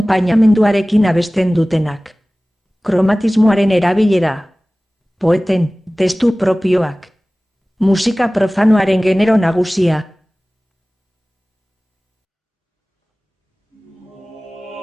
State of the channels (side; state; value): both; normal; correlation 0.98